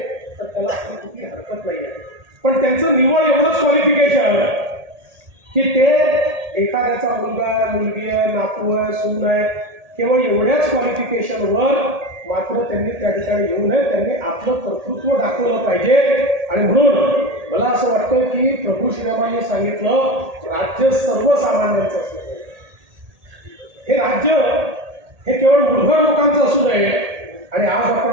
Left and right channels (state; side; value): late; left; 1.8 ms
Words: तर त्याला आपण कुठली हरकत नाही आहे. पण त्यांचं निवड एवढंच क्वालिफिकेशन की ते एखाद्याचा मुलगा मुलगी आहे, नातू आहे, सून आहे, केवळ एवढ्याच क्वालिफिकेशनवर मात्र त्यांनी त्या ठिकाणी येऊ नये. त्यांनी आपलं कर्तृत्व दाखवलं पाहिजे. आणि म्हणून मला असं वाटतं की प्रभू श्रीरामांनी सांगितलं राज्य सर्वसामान्यांचं असलं पाहिजे. हे राज्य हे केवळ मूलभूत लोकांचं असू नये. आणि आज